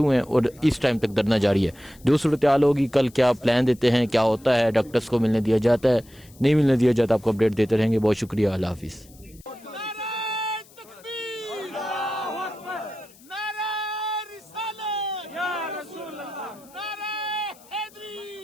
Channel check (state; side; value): noise; left; hiss, 25 dB below the sound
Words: हुए हैं और इस टाइम तक धरना जारी है। जो सूरत हाल होगी, कल क्या प्लान देते हैं, क्या होता है, डॉक्टर्स को मिलने दिया जाता है, नहीं मिलने दिया जाता, आपको अपडेट देते रहेंगे। बहुत शुक्रिया, अल्लाह हाफिज़।